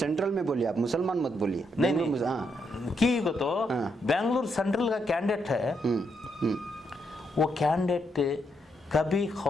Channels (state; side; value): normal; both; correlation 0.78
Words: में बोलिए, आप मुसलमान मत बोलिए। नहीं हाँ। की को तो बेंगलुरु सेंट्रल का कैंडिडेट है। वो कैंडिडेट कभी